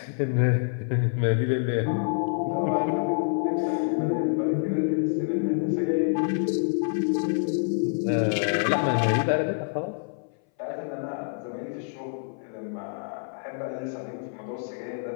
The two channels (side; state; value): right; silent; 59 dB below the other